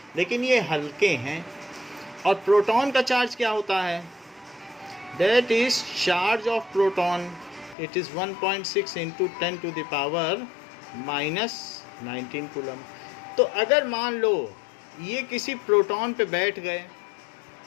लेकिन ये हल्के हैं। और प्रोटॉन का चार्ज क्या होता है? That is charge of proton, it is 1.6 × 10⁻⁻19 coulomb. तो अगर मान लो ये किसी प्रोटॉन पे बैठ गए,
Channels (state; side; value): drops out; right; at 7.8 s